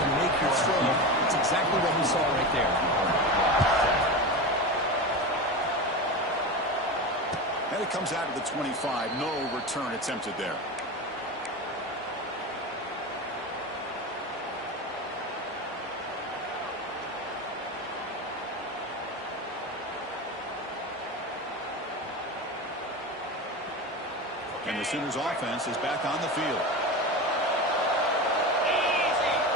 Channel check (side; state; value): both; normal; correlation 0.24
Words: make your throw. It's exactly what we saw right there. And it comes out of the 25. No return attempted there. And the Sooners offense is back on the field.